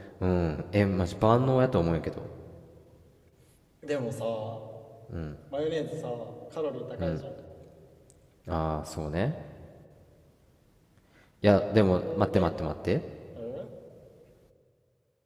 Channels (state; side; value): identical; both; correlation 1.00